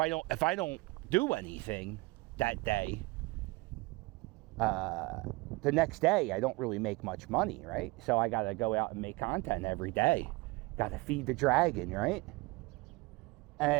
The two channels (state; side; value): quieter; left; 23.8 dB